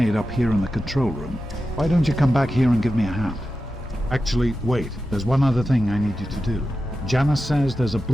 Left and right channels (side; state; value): both; normal; correlation 0.91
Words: up here in the control room. Why don't you come back here and give me a hand? Actually, wait. There's one other thing I need you to do. Janice says there's a